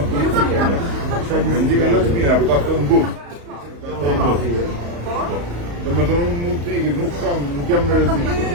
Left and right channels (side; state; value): left; late; 35 ms